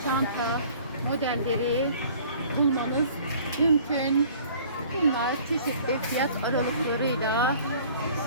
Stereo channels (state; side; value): inverted; both; correlation -0.51